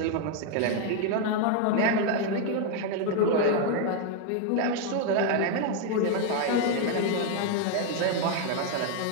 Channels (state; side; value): different; both; correlation 0.01